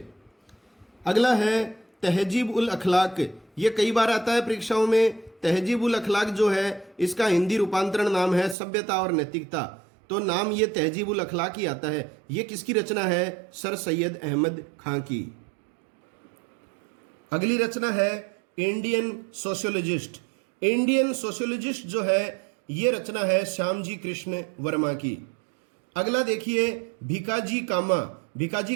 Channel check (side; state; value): left; drops out; at 8.6 s